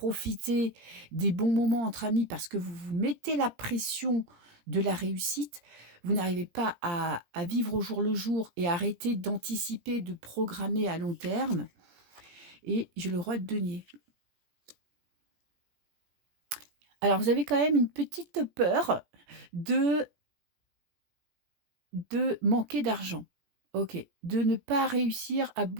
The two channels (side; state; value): left; late; 17 ms